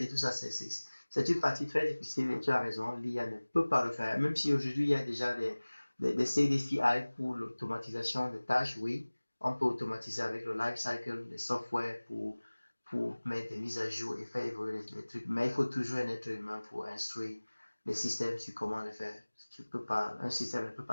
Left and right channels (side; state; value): both; inverted; correlation -1.00